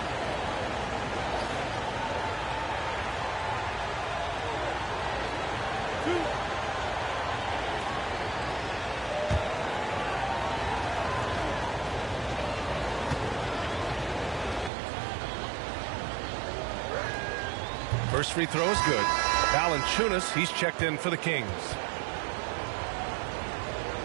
First free throw is good. Valanciunas, he's checked in for the Kings.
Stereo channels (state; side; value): drops out; left; at 14.7 s